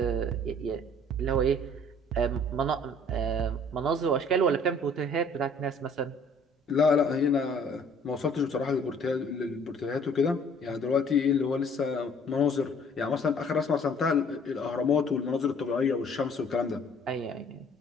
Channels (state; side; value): normal; both; correlation 0.55